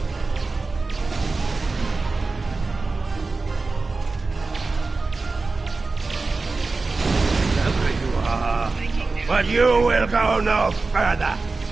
But you will go no further.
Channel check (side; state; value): left; quieter; 3.8 dB